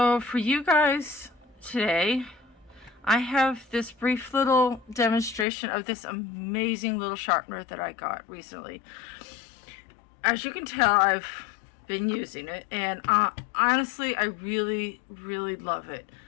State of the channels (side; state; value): right; drops out; at 5.5 s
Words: for you guys today, I have this brief little demonstration of this amazing little sharpener that I got recently. As you can tell, I've been using it, and honestly, I really love it.